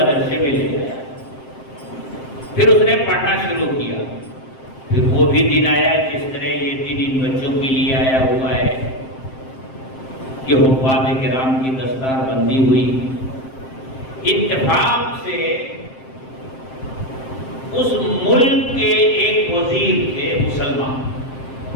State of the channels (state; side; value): late; right; 7.6 ms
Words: میں لے گیا۔ پھر اس نے پڑھنا شروع کیا۔ پھر وہ بھی دن آیا جس طرح یہ دن ان بچوں کے لیے آیا ہوا ہے کہ حفاظ کرام کی دستار بندی ہوئی۔ اتفاق سے اس ملک کے ایک وزیر تھے مسلمان،